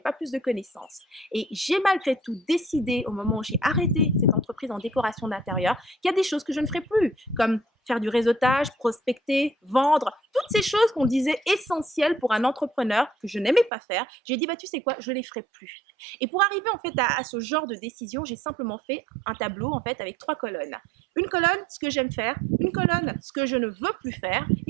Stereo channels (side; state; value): left; drops out; at 13.7 s